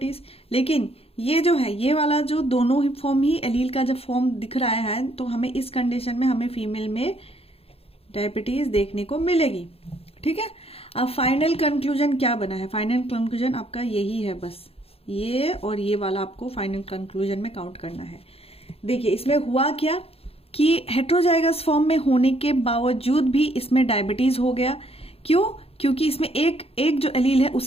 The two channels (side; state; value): right; late; 0.28 ms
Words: लेकिन ये जो है ये वाला जो दोनों ही फॉर्म ही एलील का जब फॉर्म दिख रहा है, तो हमें इस कंडीशन में हमें फीमेल में डायबिटीज देखने को मिलेगी, ठीक है। अब फाइनल कंक्लूजन क्या बना है, फाइनल कंक्लूजन आपका यही है, बस ये और ये वाला आपको फाइनल कंक्लूजन में काउंट करना है। देखिए इसमें हुआ क्या कि हेट्रोजाइगस फॉर्म में होने के बावजूद भी इसमें डायबिटीज हो गया। क्यों, क्योंकि इसमें एक जो एलील है